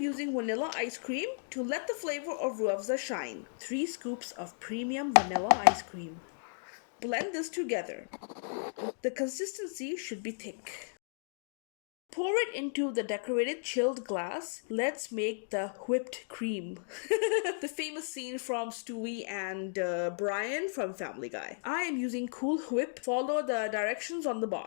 vanilla ice cream to let the flavor of Rooh Afza shine. 3 scoops of premium vanilla ice cream. Blend this together. The consistency should be thick. Pour it into the decorated chilled glass. Let's make the whipped cream. The famous scene from Stewie and Brian from Family Guy. I am using Cool Whip. Follow the directions on the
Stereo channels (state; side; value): silent; right; digital silence